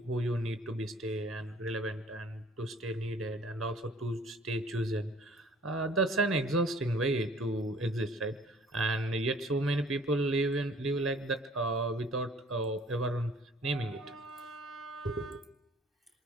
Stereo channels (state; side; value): normal; both; correlation 0.54